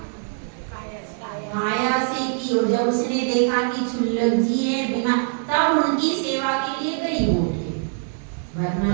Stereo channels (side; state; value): left; silent; 59 dB below the other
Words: काया से की। और जब उसने देखा कि क्षुल्लक जी है बीमार, तब उनकी सेवा के लिए गई होगी,